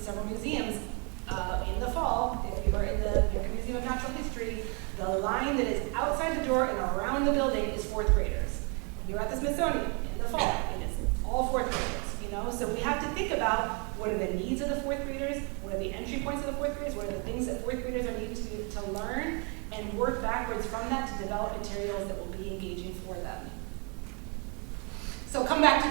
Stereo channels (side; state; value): left; quieter; 34.4 dB